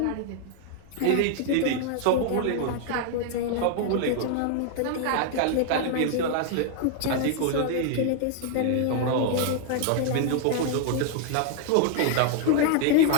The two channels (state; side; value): different; both; correlation 0.00